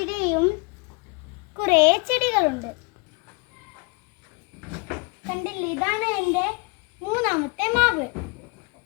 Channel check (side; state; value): right; quieter; 30.3 dB